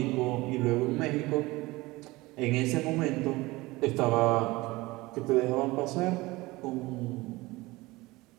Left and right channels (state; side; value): quieter; left; 20.9 dB